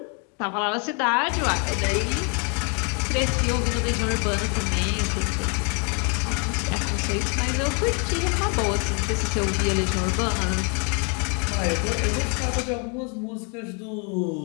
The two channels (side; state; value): right; quieter; 37.0 dB